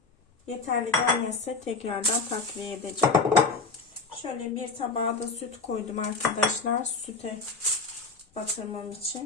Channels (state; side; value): quieter; right; 4.2 dB